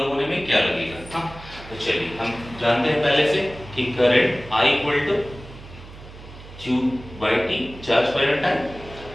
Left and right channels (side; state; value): right; noise; hum, 17 dB below the sound